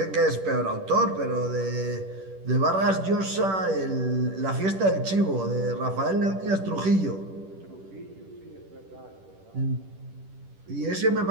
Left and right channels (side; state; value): left; late; 10 ms